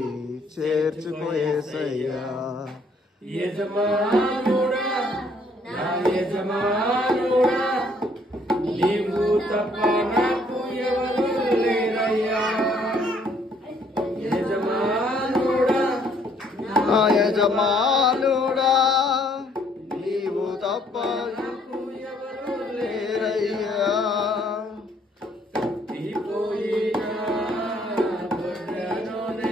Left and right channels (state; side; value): normal; both; correlation 0.64